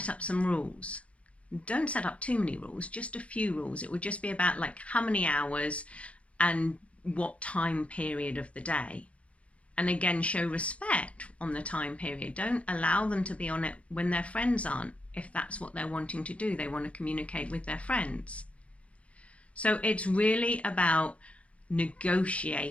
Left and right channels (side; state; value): right; late; 0.063 ms